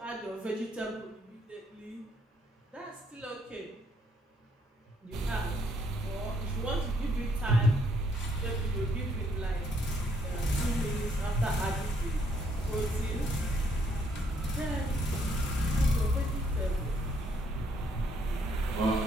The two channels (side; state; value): both; normal; correlation 0.70